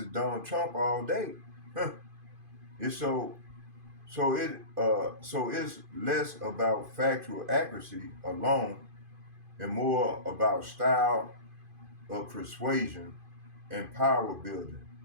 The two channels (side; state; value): left; late; 2.5 ms